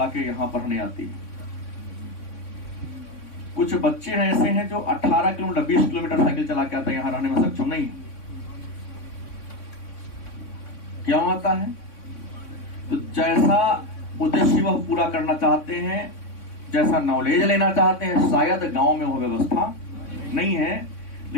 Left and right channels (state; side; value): late; right; 3.6 ms